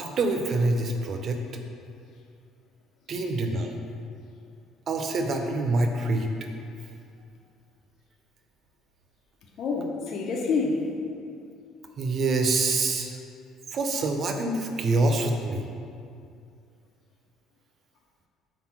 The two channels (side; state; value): both; normal; correlation 0.71